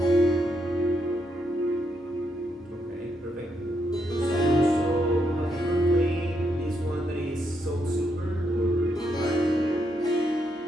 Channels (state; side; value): normal; both; correlation 0.78